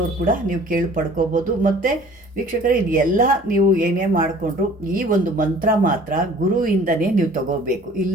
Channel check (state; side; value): normal; both; correlation 0.50